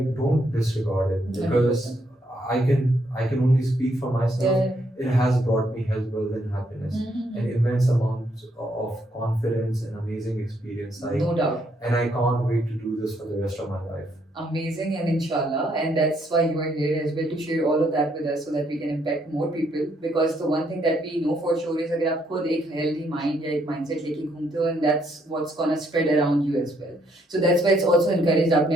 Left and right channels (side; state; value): both; normal; correlation 0.72